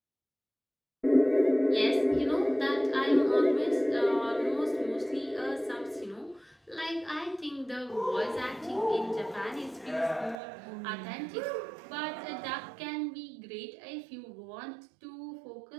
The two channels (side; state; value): left; drops out; at 10.4 s